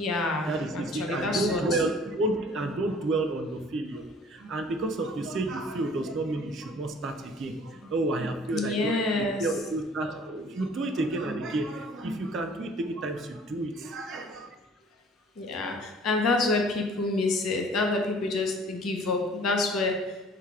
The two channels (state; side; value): normal; both; correlation 0.52